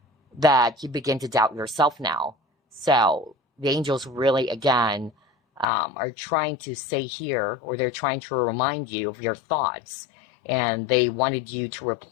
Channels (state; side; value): drops out; right; at 5.7 s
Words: that you begin to doubt yourself now. So the angels really, again, are trying to say here, or they're trying to remind you of your thoughts. And they wanted you to